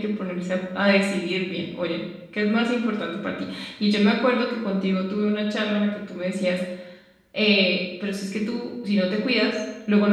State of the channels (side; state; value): both; identical; correlation 1.00